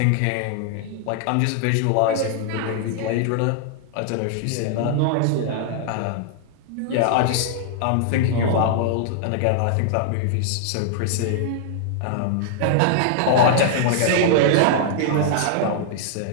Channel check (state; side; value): different; both; correlation -0.01